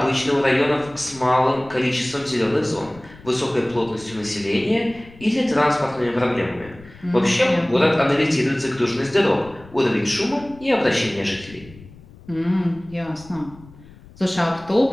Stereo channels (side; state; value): left; noise; rumble, 21 dB below the sound